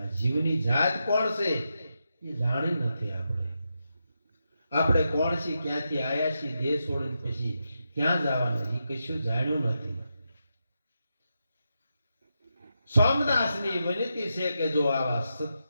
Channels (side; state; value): both; inverted; correlation -0.86